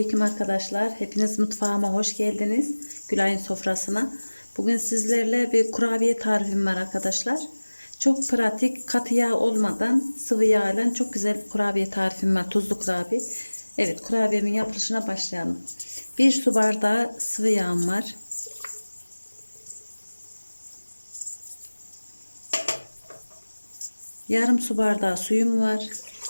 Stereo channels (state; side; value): inverted; both; correlation -1.00